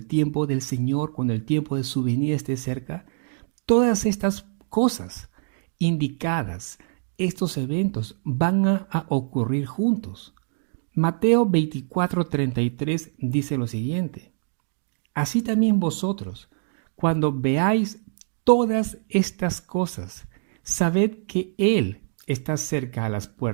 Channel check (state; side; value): silent; left; digital silence